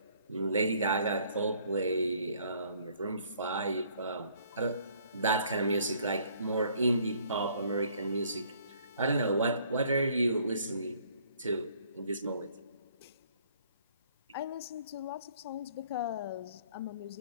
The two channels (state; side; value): inverted; both; correlation -0.61